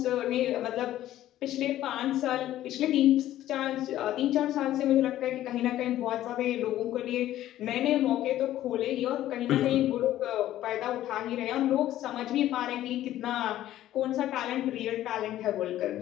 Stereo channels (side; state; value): right; quieter; 13.4 dB